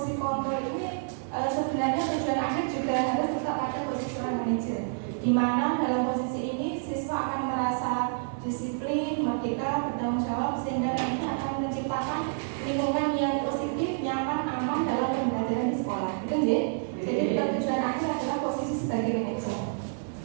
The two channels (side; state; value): left; silent; 59 dB below the other